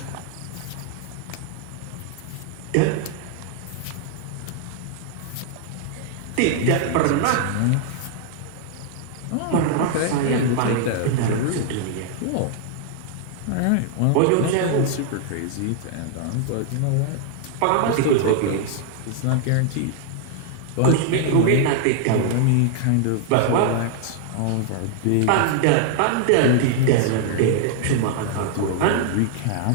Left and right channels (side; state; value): both; different; correlation 0.00